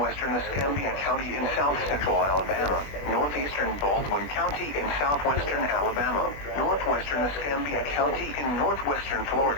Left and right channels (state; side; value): late; right; 20 ms